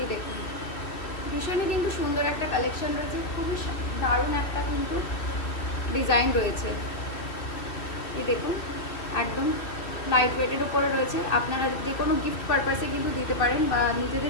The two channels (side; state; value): right; late; 2.5 ms